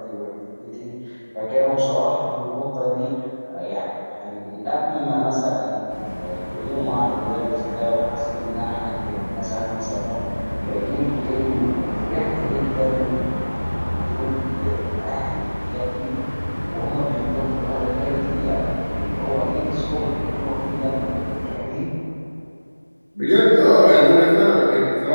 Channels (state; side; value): inverted; both; correlation -1.00